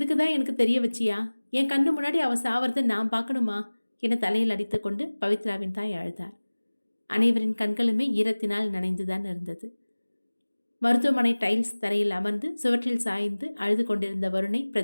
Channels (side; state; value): both; inverted; correlation -1.00